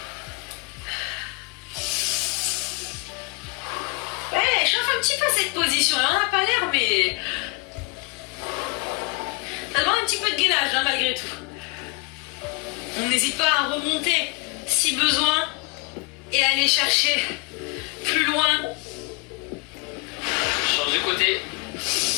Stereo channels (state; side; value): quieter; right; 26.6 dB